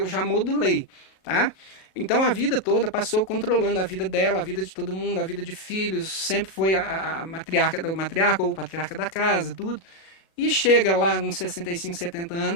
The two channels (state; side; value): late; right; 37 ms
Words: já modulei, tá? Então a vida toda passou controlando a vida dela, a vida de todo mundo, a vida de filhos, sempre foi a matriarca ou o patriarca da casa, tudo. E chega lá nos 65, 70